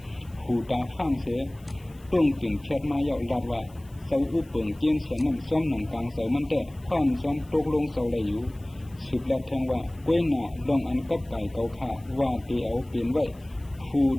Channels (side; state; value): left; noise; hiss, 28 dB below the sound